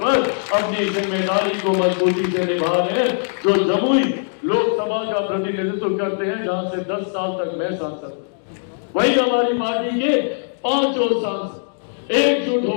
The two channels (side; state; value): right; silent; digital silence